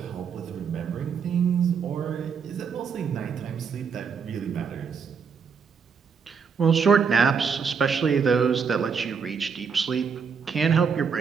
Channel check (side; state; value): left; quieter; 6.2 dB